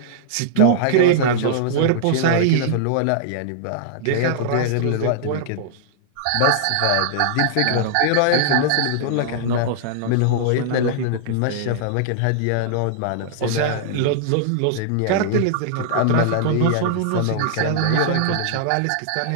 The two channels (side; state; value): both; different; correlation -0.01